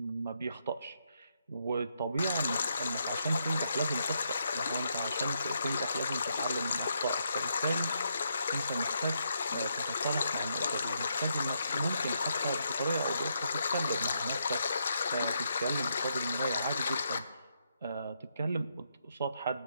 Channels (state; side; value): inverted; both; correlation -0.78